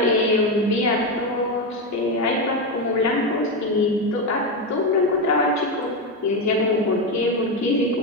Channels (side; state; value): both; normal; correlation 0.11